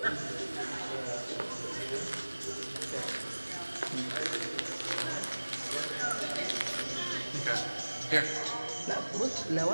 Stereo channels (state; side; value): inverted; both; correlation -1.00